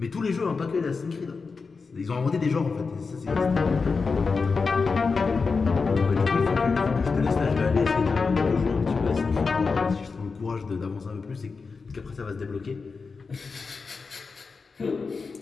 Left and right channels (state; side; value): quieter; right; 4.7 dB